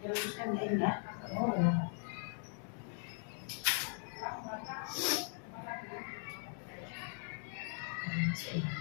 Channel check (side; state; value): right; silent; 51 dB below the other